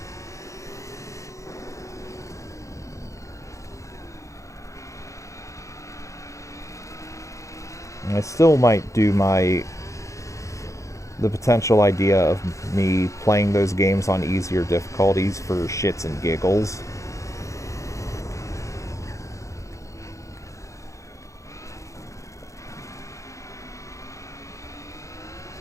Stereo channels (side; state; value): right; late; 0.15 ms